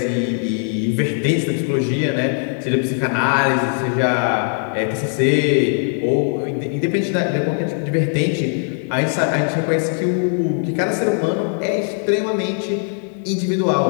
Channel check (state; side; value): silent; right; 55 dB below the other